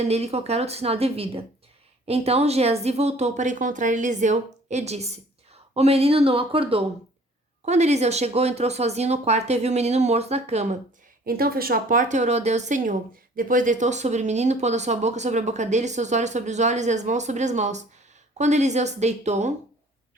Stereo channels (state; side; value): normal; both; correlation 0.53